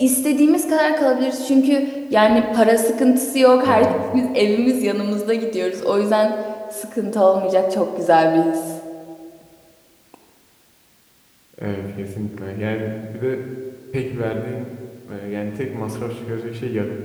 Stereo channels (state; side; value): identical; both; correlation 1.00